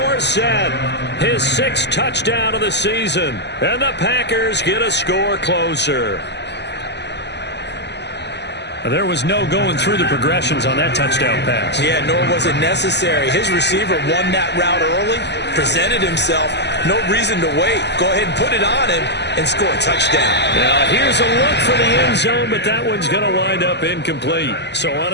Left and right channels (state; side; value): late; right; 0.50 ms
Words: his 6th touchdown of the season. And the Packers get a score closer. There was no going through the progressions on that touchdown pass. Yeah, nor was it necessary. His receiver won that route early, presented himself. No reason to wait. Go ahead and put it on him and score a touchdown. Now, here's a look for the end zone, but that one's going to wind up incomplete. So